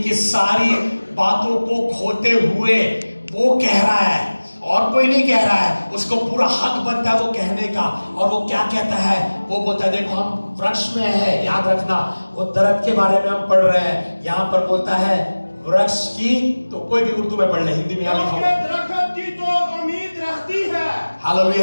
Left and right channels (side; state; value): both; inverted; correlation -1.00